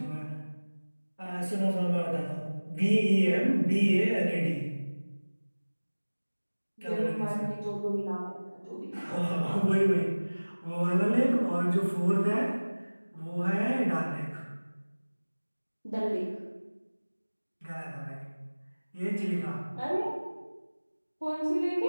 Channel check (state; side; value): inverted; both; correlation -1.00